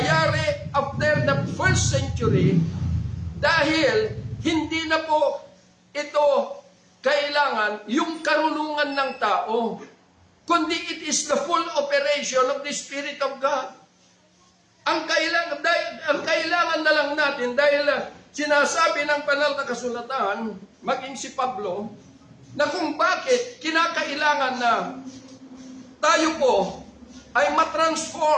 after the first century, dahil hindi na po ito kailangan yung karunungan ng tao, kundi it is the full operation of the Spirit of God. Ang kailangan na lang natin, dahil sinasabi ng banal na kasulatan, maging si Pablo, na kung bakit kinakailangan na tayo po ay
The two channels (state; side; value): identical; both; correlation 1.00